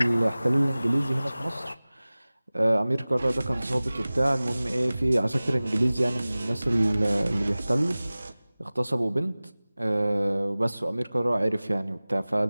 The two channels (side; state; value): both; inverted; correlation -0.98